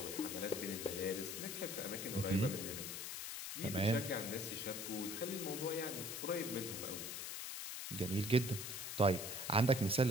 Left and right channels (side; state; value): left; noise; hiss, 5 dB below the sound